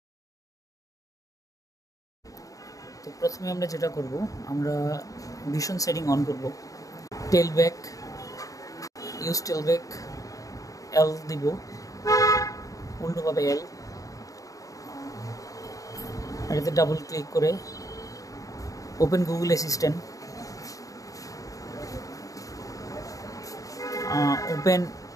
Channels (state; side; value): late; right; 0.16 ms